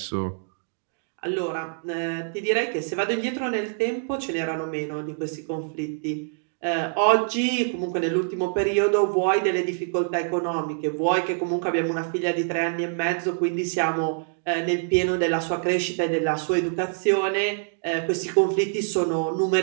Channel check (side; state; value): left; silent; digital silence